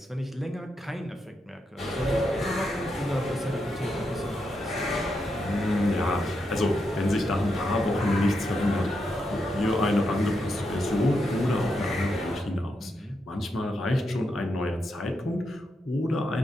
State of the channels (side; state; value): both; normal; correlation 0.84